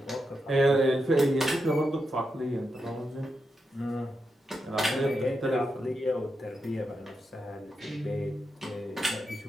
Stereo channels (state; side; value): normal; both; correlation 0.86